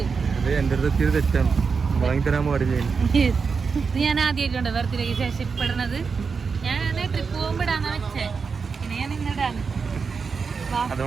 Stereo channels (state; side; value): quieter; left; 5.3 dB